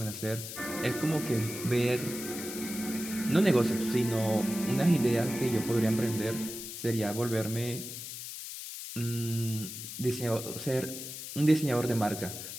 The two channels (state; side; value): noise; left; hiss, 9 dB below the sound